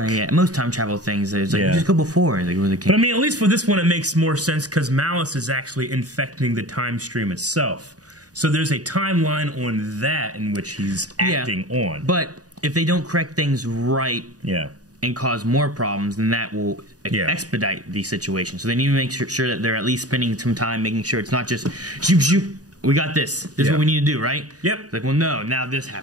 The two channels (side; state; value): left; late; 0.68 ms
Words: most time travel things, it's like, just go before. Like, but I mean, at least for this one, it makes more sense because Malice is actually infecting the time stream itself. So there's a timeline on that in which he's acting on. But if they don't correct things right and cause more problems, then that will expedite the situation. So they need to make sure that they're at least spending some time making sure it's not just, shoot, shoot, we got this. This is what we need to do, right? Yep. It's like, well, no, now this